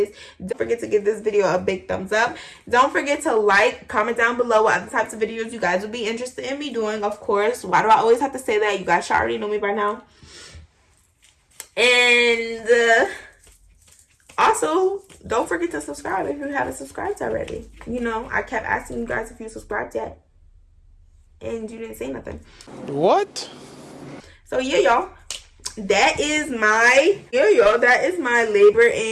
don't forget to give this video a big thumbs up. Don't forget to like, comment down below what other types of videos you guys would be interested in me doing, of course. Why do I always have to say that? You guys should already know me by now. And also, don't forget to subscribe if you haven't subscribed already. You know, I kept asking you guys if you subscribed yet, and you didn't say nothing. What? So yeah, y'all, that is my labor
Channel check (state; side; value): identical; both; correlation 1.00